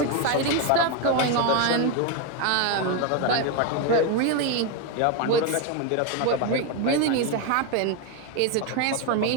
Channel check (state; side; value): different; both; correlation 0.02